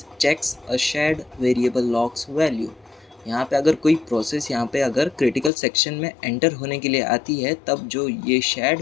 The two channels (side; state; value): right; drops out; at 5.5 s